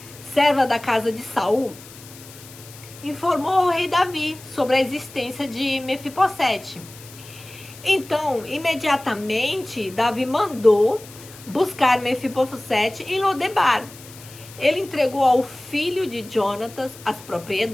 serva da casa de Saul, informou ao rei Davi sobre a existência de Mefibosete. Então, imediatamente, Davi mandou buscar Mefibosete em Lodebar. Ele entregou ao filho de Jonatas as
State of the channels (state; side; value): noise; left; hiss, 19 dB below the sound